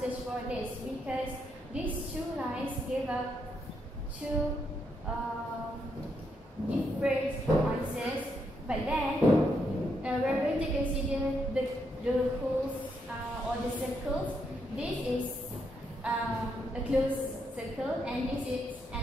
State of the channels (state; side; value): normal; both; correlation 0.78